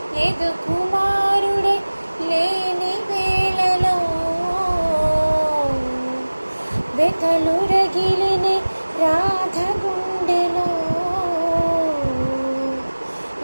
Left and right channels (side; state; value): both; inverted; correlation -1.00